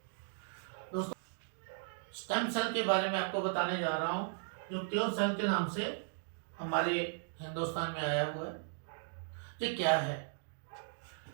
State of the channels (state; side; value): silent; left; digital silence